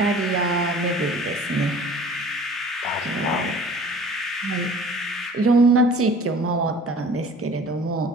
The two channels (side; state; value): both; normal; correlation 0.46